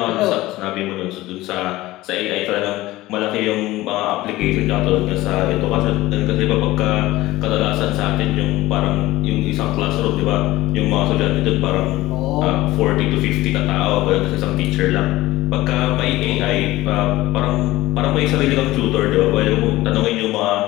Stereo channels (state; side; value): quieter; right; 17.8 dB